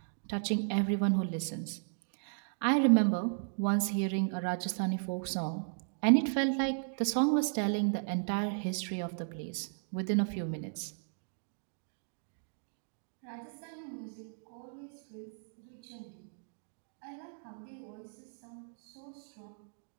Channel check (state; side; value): silent; left; digital silence